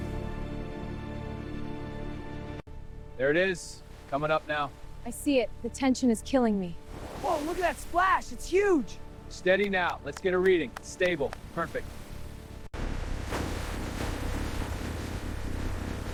There it is, coming up now. I see it. The tension is killing me. Whoa, look at that splash, it's huge. Steady now, let's get a reading. Stable, perfect.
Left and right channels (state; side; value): identical; both; correlation 1.00